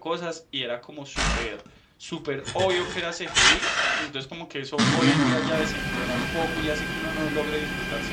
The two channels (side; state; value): both; identical; correlation 1.00